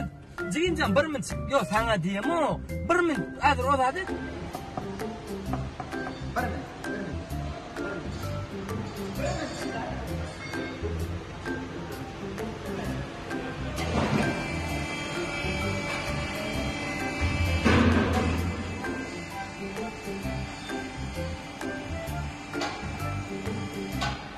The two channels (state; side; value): identical; both; correlation 1.00